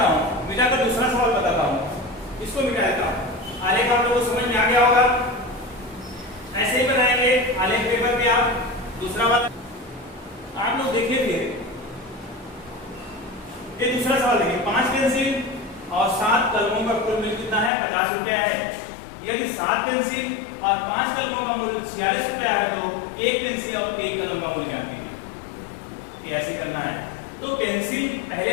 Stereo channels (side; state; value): right; drops out; at 17.7 s